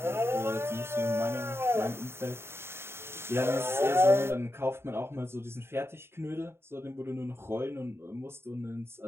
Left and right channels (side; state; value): left; late; 0.12 ms